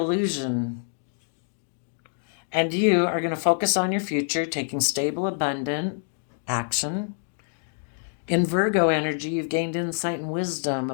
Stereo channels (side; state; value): right; silent; digital silence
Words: And you are going to focus on your future, taking stable, abundant action. In Virgo energy, you've gained insight and wisdom